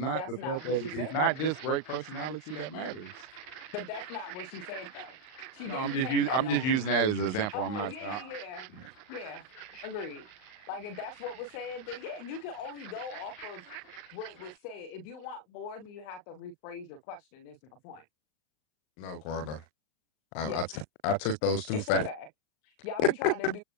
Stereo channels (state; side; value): late; right; 39 ms